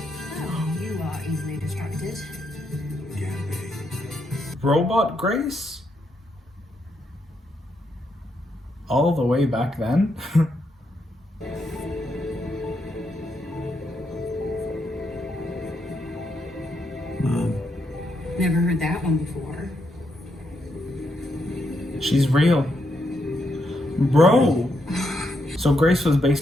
Oh, you are easily distracted. Can be. Robot Grace? All the way back then? Mom. Never heard that one before. She's real. Bro! So Grace was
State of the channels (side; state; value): both; normal; correlation 0.79